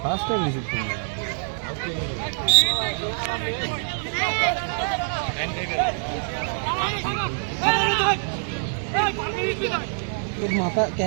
First time receive করলাম। মাথা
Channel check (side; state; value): left; silent; 58 dB below the other